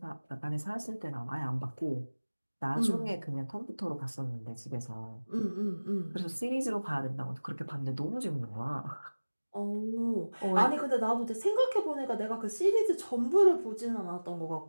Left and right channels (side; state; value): both; inverted; correlation -1.00